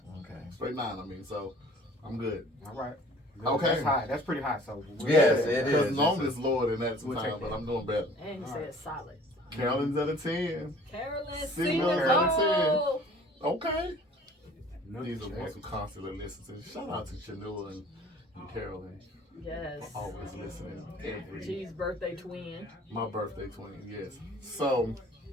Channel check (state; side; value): normal; both; correlation 0.50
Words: Okay. Straight 9, I mean, so I'm good. All right. Okay. That's high. That's pretty high. So Yes, it Because is. normally it's lower than that We'll sometimes, take but that. I'm doing better. And he All said right. solid. Carolyn's at a 10. Carolyn, See see Mills the at a 10. goal. Okay. no These are check. the ones who constantly listen to. Shout out to Chanua and Carolyn Yes. for always listening. Every G's birthday twin. my birthday 20, yes. So,